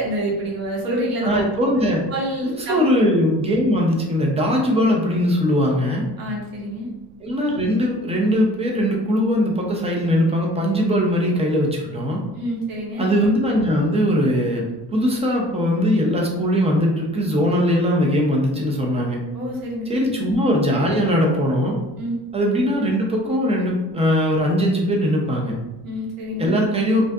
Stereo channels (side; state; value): right; noise; rumble, 29 dB below the sound